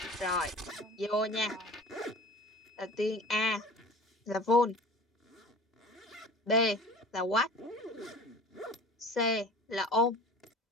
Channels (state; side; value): normal; both; correlation 0.41